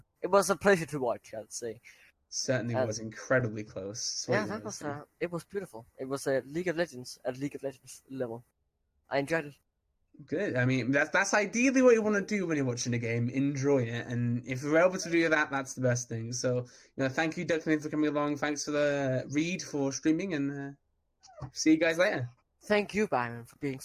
It was a pleasure to watch, I'd say. Certainly was incredibly close. It was beautiful. It was a League of Legends at League of Legends level. I enjoyed it. Good. I mean, that's ideally what you want to do when you're watching a game. Enjoy it, and if you're able to do that, that's the best thing. So, thank you, Declan, for coming along. Thanks for the Reed for streaming, and see you guys later. Thank you, Byron, for being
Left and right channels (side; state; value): both; identical; correlation 1.00